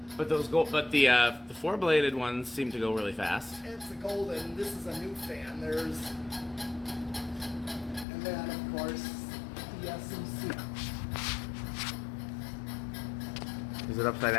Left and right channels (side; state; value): right; drops out; at 8.1 s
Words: But the four-bladed ones seem to go really fast. It's a golden. This is a new fan. And then of course the SMC. Is it upside